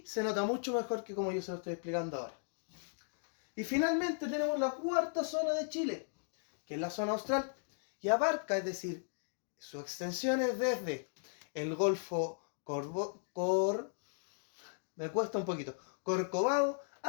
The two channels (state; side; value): silent; right; digital silence